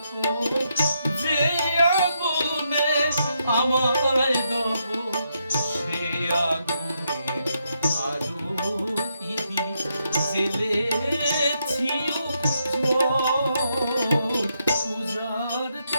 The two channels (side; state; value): both; inverted; correlation -0.80